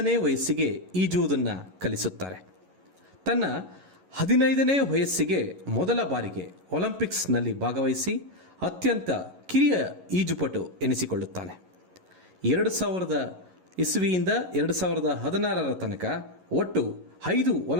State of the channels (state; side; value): late; left; 11 ms